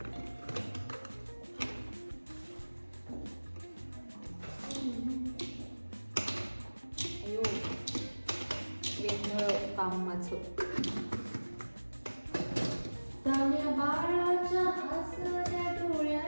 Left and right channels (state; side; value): inverted; both; correlation -1.00